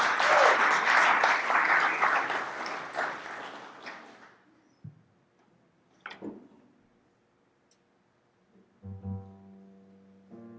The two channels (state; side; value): identical; both; correlation 1.00